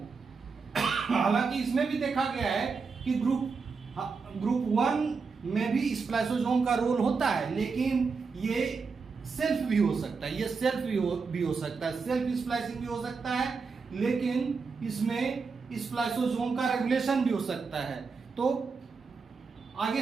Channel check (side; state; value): left; quieter; 4.9 dB